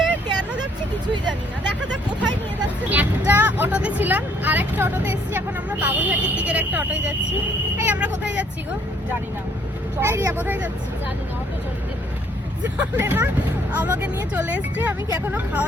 কেন যাচ্ছি কিছুই জানি না। দেখা যাক কোথায় নিয়ে যাচ্ছে। একটা অটোতে ছিলাম, আর একটা অটোতে এসেছি। এখন আমরা বাবুঘাটের দিকের একটা অটোয় যাচ্ছি। এই আমরা কোথায় যাচ্ছি গো? জানি না, এই রিয়া কোথায় যাচ্ছি? জানি না, অটো চলতে জানে না, আমাকে নিয়ে চলে এসছে। আমি কি এখনো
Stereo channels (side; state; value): both; normal; correlation 0.64